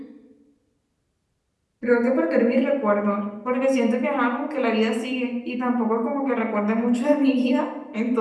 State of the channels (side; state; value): both; identical; correlation 1.00